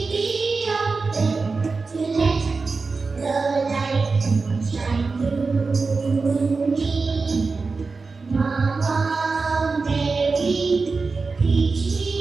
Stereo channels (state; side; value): quieter; left; 4.2 dB